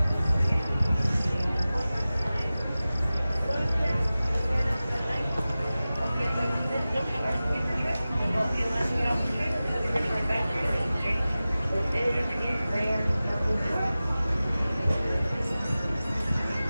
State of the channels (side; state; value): both; inverted; correlation -0.96